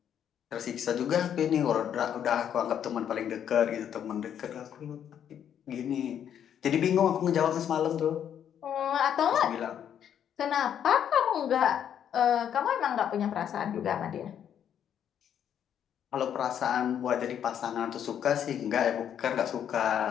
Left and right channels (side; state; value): right; quieter; 9.2 dB